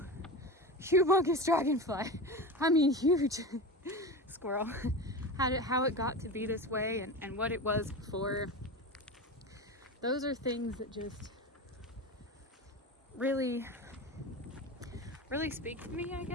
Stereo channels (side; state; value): both; normal; correlation 0.25